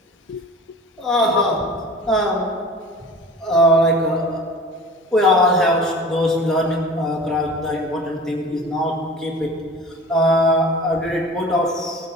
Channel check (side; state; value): both; normal; correlation 0.40